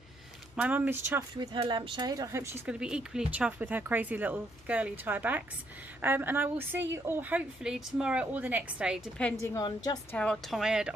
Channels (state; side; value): normal; both; correlation 0.73